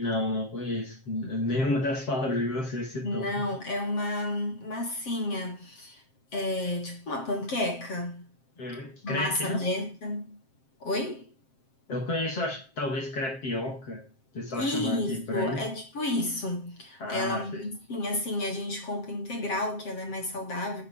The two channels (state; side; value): late; right; 7.6 ms